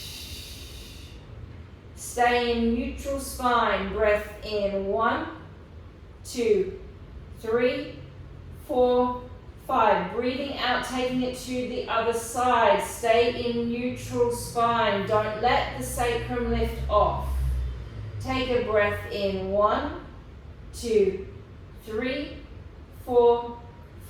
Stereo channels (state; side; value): identical; both; correlation 1.00